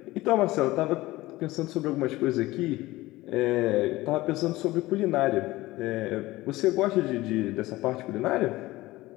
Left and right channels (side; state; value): right; quieter; 18.6 dB